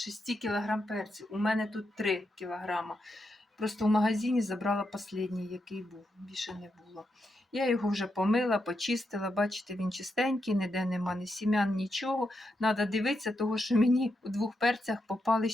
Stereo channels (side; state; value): both; normal; correlation 0.84